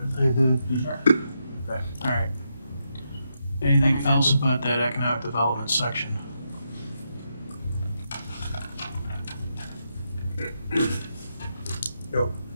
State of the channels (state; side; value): inverted; both; correlation -0.83